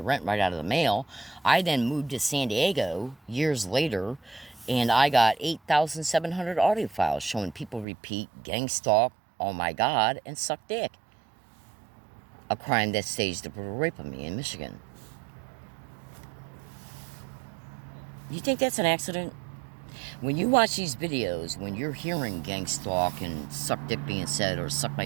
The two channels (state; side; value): drops out; left; at 7.9 s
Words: right out of the mail. I then moved to San Diego years later, and I got 8,700 audio files showing people repeat gang stalk, oh my God, and suck dick. A crime that staged the brutal rape of me in Michigan. You think that's an accident? When you watch these videos, when you're hearing gang stalk and suck dick being said, or suck